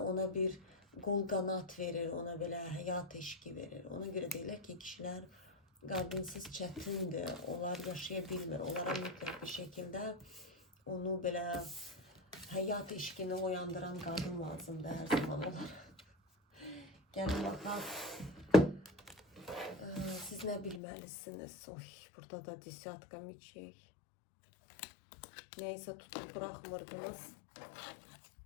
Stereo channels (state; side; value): drops out; right; at 20.8 s